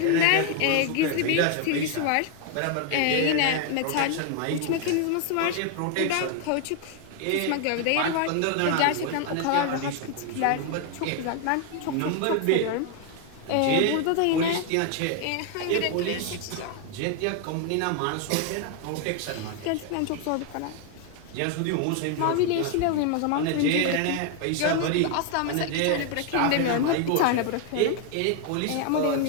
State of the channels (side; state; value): both; different; correlation 0.01